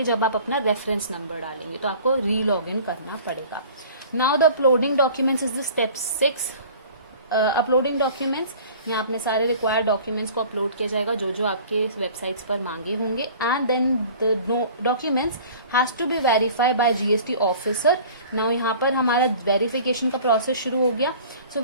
जब आप अपना रेफरेंस नंबर डालेंगे। तो आपको री लॉग इन करना पड़ेगा। Now the uploading documents is the step 6। Uploading documents, यहाँ अपने सारे रिक्वायर्ड डॉक्यूमेंट्स को अपलोड किया जाएगा जो जो आपके वेबसाइट्स पर मांगे होंगे। And then the documents has to be verified by GST officer. Now यहाँ पर हमारा वेरिफिकेशन का प्रोसेस शुरू हो गया। सो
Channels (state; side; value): inverted; both; correlation -0.46